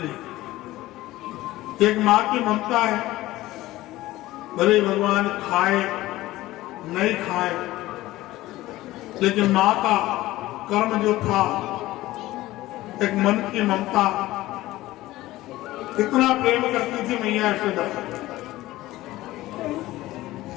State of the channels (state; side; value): quieter; right; 17.0 dB